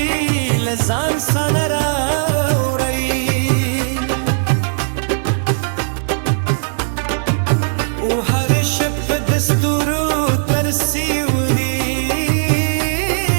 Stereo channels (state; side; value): silent; left; digital silence